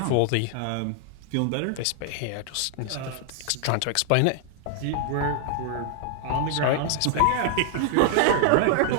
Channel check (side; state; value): both; different; correlation 0.00